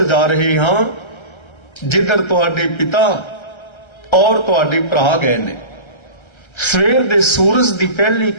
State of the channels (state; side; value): late; right; 1.3 ms